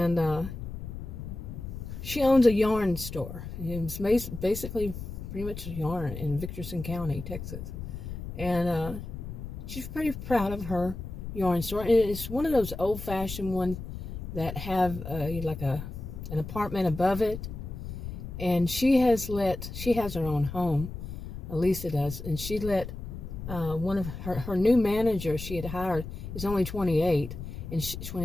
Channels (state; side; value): noise; left; rumble, 9 dB below the sound